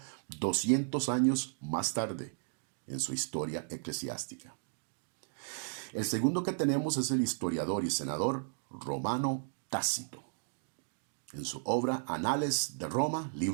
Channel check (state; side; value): silent; left; digital silence